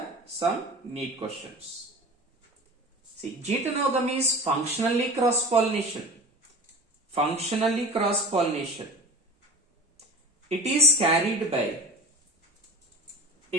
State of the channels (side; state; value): both; normal; correlation 0.36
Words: some neat questions. See, getonogamy is functionally cross-pollination. Functionally cross-pollination. It is carried by